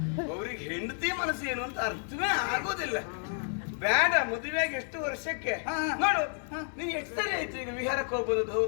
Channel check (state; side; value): silent; right; 57 dB below the other